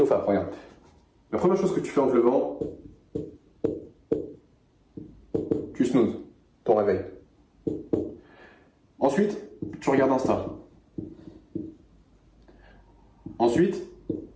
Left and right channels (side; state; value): both; identical; correlation 1.00